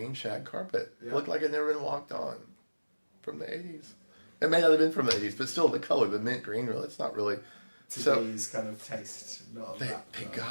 shag carpet. Yeah. It looked like it had never been walked on from the 80s. It may not have been from the 80s, but still the color, the mint green, really, it's not really... Today's kind of taste. They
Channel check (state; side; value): inverted; both; correlation -1.00